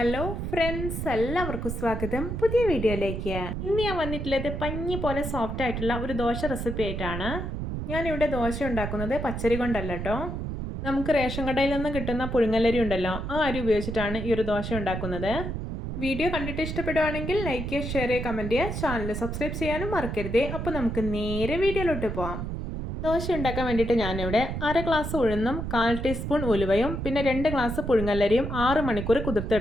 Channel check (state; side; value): noise; right; rumble, 4 dB below the sound